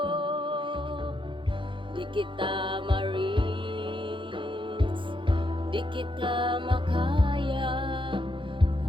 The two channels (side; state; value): left; late; 0.24 ms